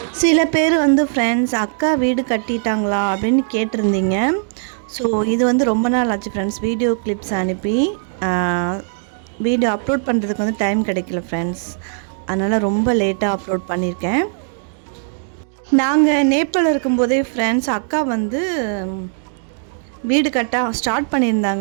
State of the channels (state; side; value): silent; left; digital silence